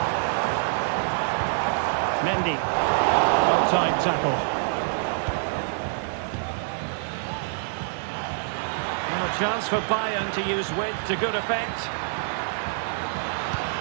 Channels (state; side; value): silent; left; 61 dB below the other